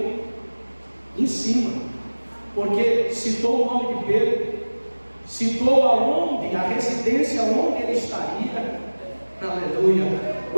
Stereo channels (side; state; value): both; inverted; correlation -1.00